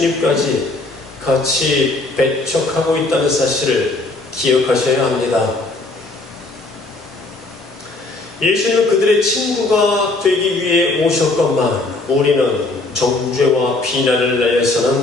같이 배척하고 있다는 사실을 기억하셔야 합니다. 예수님은 그들의 친구가 되기 위해 오셨건만 우리는 정죄와 비난을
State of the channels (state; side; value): quieter; right; 3.1 dB